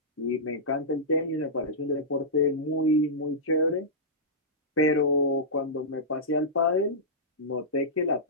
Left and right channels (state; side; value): normal; both; correlation -0.14